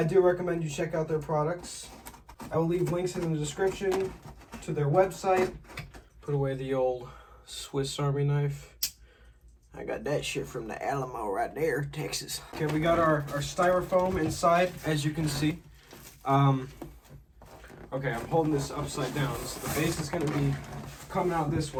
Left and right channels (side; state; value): both; identical; correlation 1.00